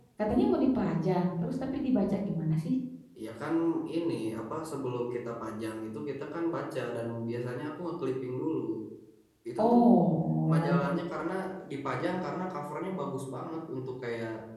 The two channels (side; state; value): both; identical; correlation 1.00